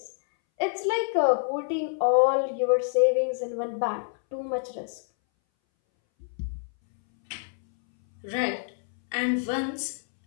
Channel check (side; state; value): right; silent; 60 dB below the other